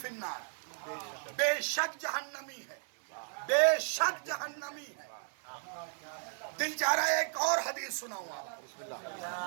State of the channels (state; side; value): silent; left; 54 dB below the other